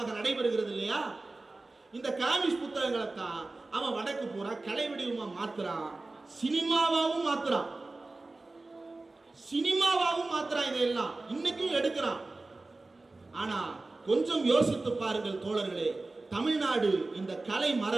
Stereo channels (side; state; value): left; quieter; 3.2 dB